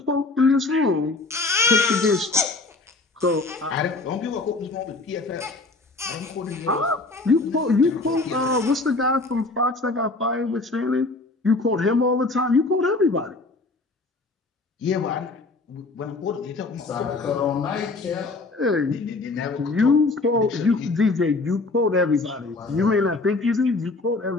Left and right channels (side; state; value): right; quieter; 3.4 dB